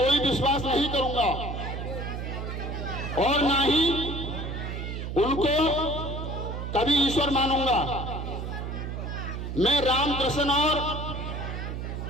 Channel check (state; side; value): noise; right; hum, 5 dB below the sound